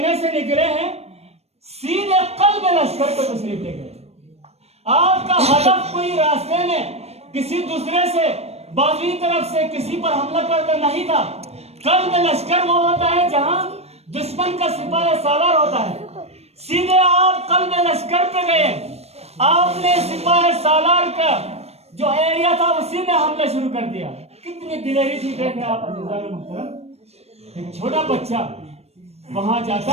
से निकले हैं, सीधे कल्ब लश्कर को तशरीफ ले गए। आपका हदफ कोई रास्ते में किसी दूसरे से बाजुई तरफ से किसी पर हमला करना नहीं था। कल्ब लश्कर वो होता है जहां दुश्मन का सिपाही सालार होता है। सीधे आप कल्ब लश्कर पे गए, आपने सिपाही सालार का जो एरिया था उसी में हमला शुरू कर दिया। कितनी दिलेरी थी देखें आप मुहतरम। एक छोटा बच्चा वहां जाता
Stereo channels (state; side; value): late; left; 0.31 ms